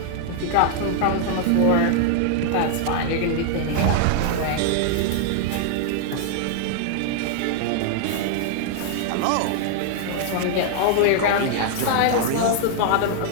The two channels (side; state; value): both; different; correlation 0.00